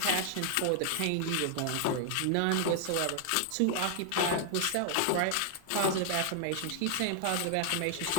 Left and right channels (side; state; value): both; different; correlation 0.00